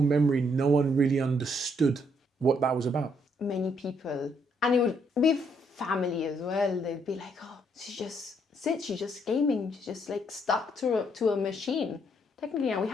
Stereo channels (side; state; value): both; normal; correlation 0.72